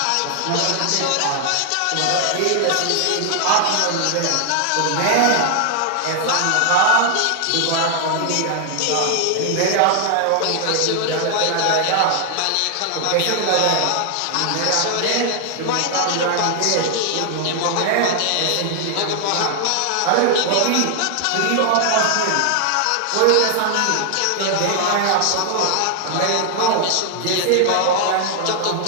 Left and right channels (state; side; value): different; both; correlation 0.00